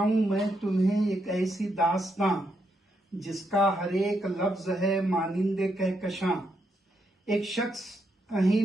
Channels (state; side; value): normal; both; correlation 0.80